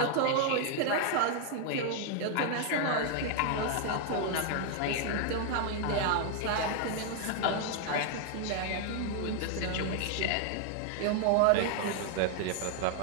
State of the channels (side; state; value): both; different; correlation 0.00